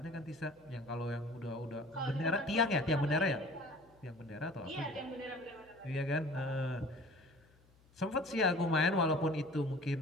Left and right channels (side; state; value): left; noise; hum, 29 dB below the sound